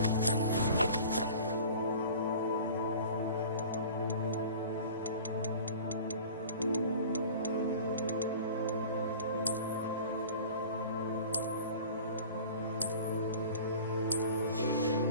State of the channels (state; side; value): inverted; both; correlation -0.41